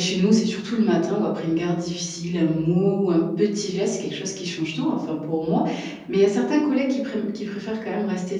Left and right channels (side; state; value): both; identical; correlation 1.00